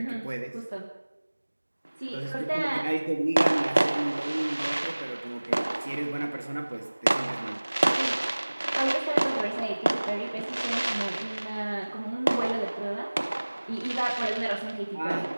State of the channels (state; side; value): inverted; both; correlation -1.00